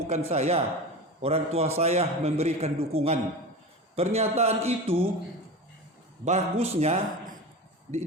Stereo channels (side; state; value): both; normal; correlation 0.28